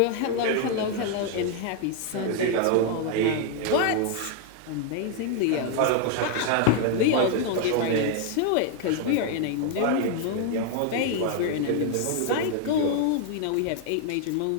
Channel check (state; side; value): different; both; correlation 0.00